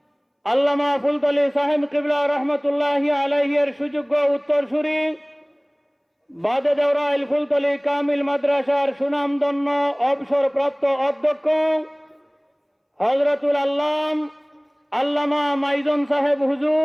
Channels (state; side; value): identical; both; correlation 1.00